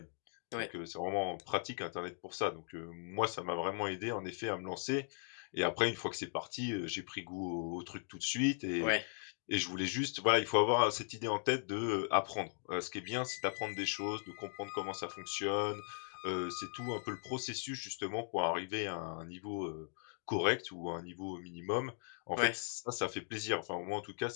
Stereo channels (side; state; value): right; silent; 52 dB below the other